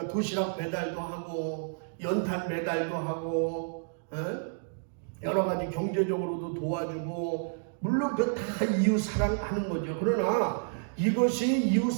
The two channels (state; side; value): silent; left; digital silence